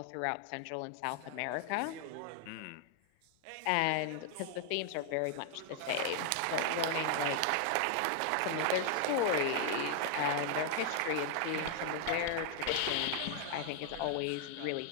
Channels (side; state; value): both; different; correlation 0.00